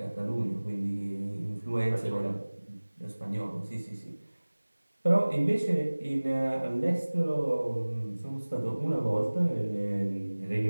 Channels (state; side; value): inverted; both; correlation -1.00